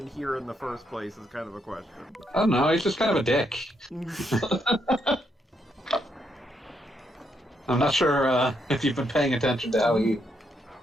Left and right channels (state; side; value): normal; both; correlation 0.77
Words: here in the first place is kind of a question. I don't know, he's just kind of a dick. I'm not sure if you've been paying attention to how he...